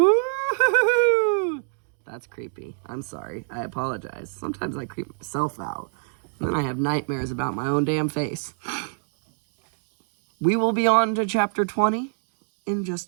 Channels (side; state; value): left; silent; digital silence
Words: That's creepy. I'm sorry. I apologize. Sometimes I creep myself out. And then I have nightmares about my own damn face. We will be on to chapter 20 in